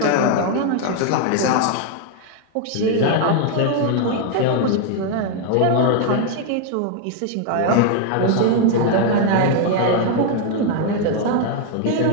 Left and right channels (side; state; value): both; different; correlation 0.00